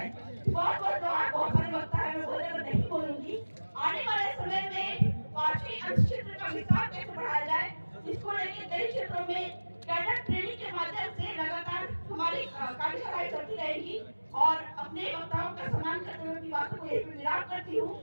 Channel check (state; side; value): inverted; both; correlation -1.00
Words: बहुत सारे वक्ता है, मैं बहुत ज्यादा नहीं बोलूंगी। आने वाले समय में 5वीं अंश क्षेत्र का विस्तार कैसे बढ़ाया जाए, इसको लेकर कई क्षेत्रों में कैडर ट्रेनिंग के माध्यम से लगातार हमारी कार्यशालाएं चलती रहेगी और अपने वक्ताओं का सम्मान करते हुए अपनी बातों को यही पे विराम करती हूँ।